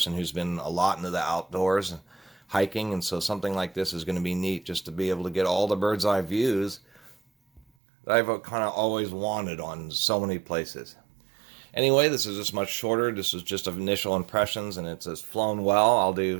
who's been a lot into the outdoors, hiking, and so something like this is going to be neat, just to be able to get all the bird's eye views that I've kind of always wanted on so many places. Anyway, this is just much shorter. This is just initial impressions, and it's flown well. I'll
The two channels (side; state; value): left; drops out; at 7.6 s